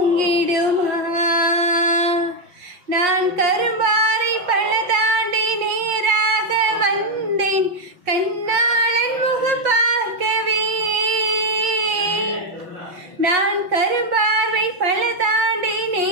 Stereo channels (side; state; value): left; late; 5.5 ms